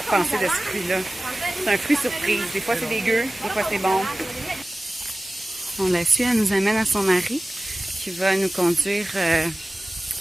penser de ce fruit-là. C'est un fruit surprise. Des fois, c'est dégueu, des fois, c'est bon. On la suit, elle nous amène à son mari qui va nous conduire à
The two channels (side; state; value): both; normal; correlation 0.96